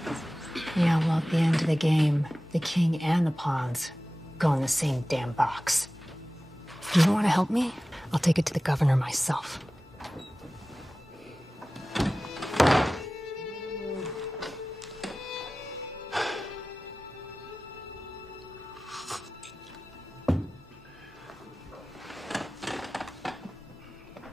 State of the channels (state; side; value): normal; both; correlation 0.96